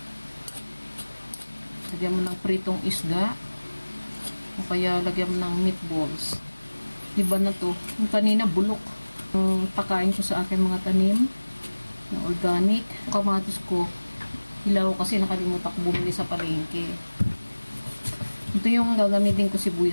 Lagyan mo ng pritong isda. O kaya lagyan mo ng meatballs. Diba na to? Yung kanina bulok. Yung pakain ko sa aking mga tanim na organic. Yung kamatis ko, hilaw kasi nakalimutan ko bumili sa palengke. Ito yung gagamitin ko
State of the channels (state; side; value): inverted; both; correlation -1.00